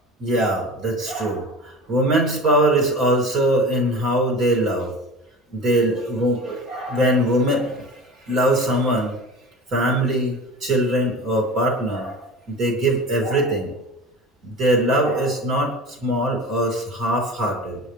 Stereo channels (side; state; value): both; normal; correlation 0.34